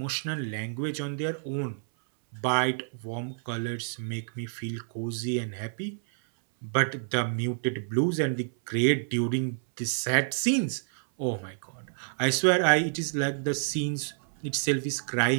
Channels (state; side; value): silent; left; 59 dB below the other